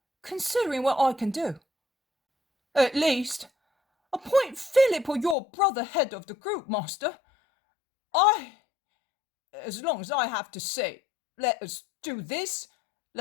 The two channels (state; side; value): drops out; right; at 5.4 s